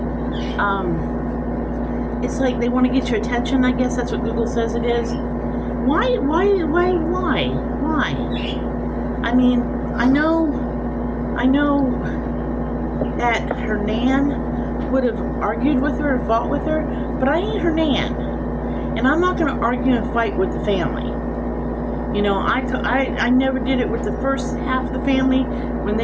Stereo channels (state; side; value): identical; both; correlation 1.00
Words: It's like they want to get your attention, I guess that's what Google says it is. Why? I mean, I know that her nan would have argued with her or fought with her, but I ain't her nan, and I'm not going to argue and fight with the family. You know, I never did it with the first half of the family when